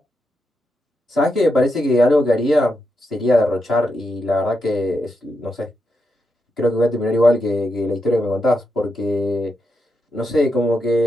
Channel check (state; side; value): normal; both; correlation 0.84